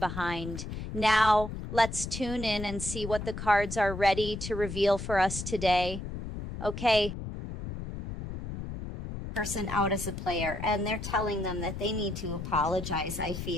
Now, let's tune in and see what the cards are ready to reveal for us today. Okay. Person out as a player, and they're telling them that they need to apologize. I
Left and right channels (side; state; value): left; noise; rumble, 7 dB below the sound